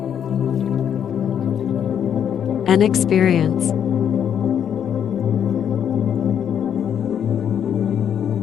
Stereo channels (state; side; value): quieter; right; 8.8 dB